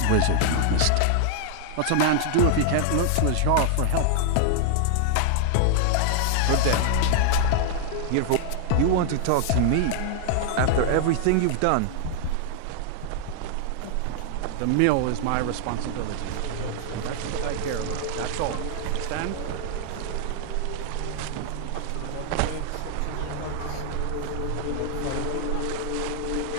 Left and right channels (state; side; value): different; both; correlation 0.00